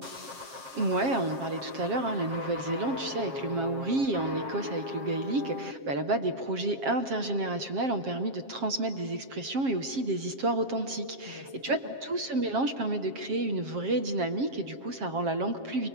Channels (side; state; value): left; late; 7.4 ms